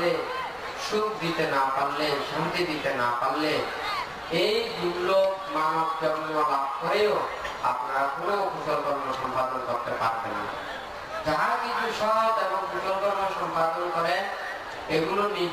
সুখ দিতে না পারলে, শান্তি দিতে না পারলে, এই দুর্লভ মানব জন্ম লাভ করেও আপনারা কোনো কুশল কর্ম সম্পাদন করতে পারবেন না। যাহা কিছু সৎ এবং কুশল কর্ম সম্পাদন করে, এগুলো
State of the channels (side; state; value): both; identical; correlation 1.00